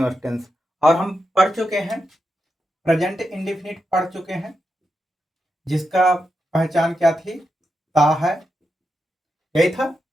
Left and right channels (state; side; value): normal; both; correlation 0.87